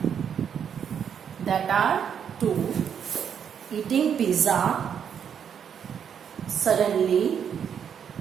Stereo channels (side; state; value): left; quieter; 8.0 dB